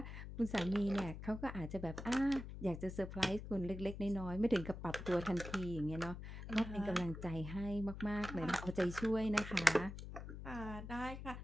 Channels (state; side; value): noise; left; hum, 9 dB below the sound